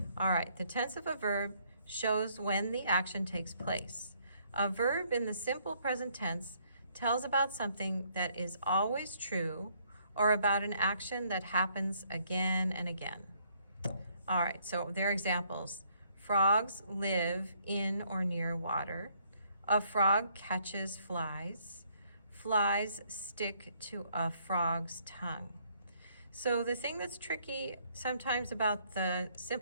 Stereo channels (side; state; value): both; inverted; correlation -0.67